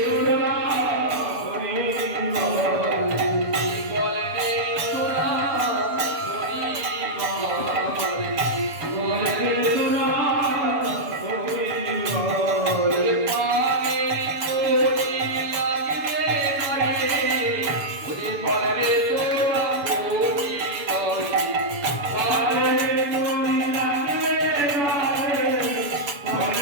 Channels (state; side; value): late; left; 7.0 ms